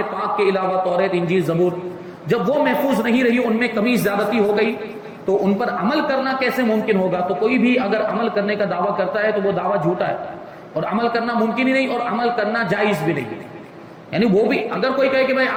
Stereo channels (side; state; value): both; identical; correlation 1.00